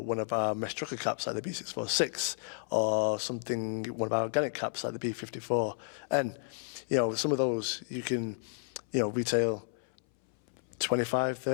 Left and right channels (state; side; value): silent; right; 56 dB below the other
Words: of our mesh trucker caps like the B646 or one of our organic caps like the B54. And, some of those you can, retail 25,